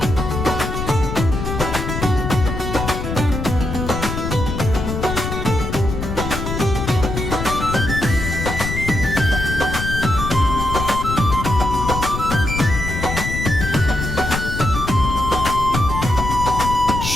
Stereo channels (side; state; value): left; noise; rumble, 4 dB below the sound